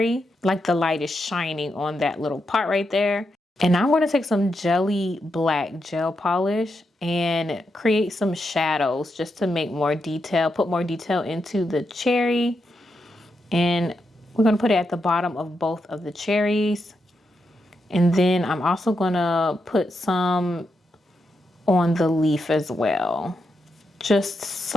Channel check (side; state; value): both; normal; correlation 0.84